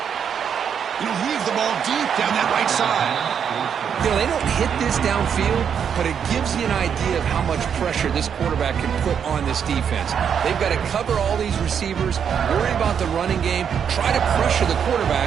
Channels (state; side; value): quieter; left; 7.7 dB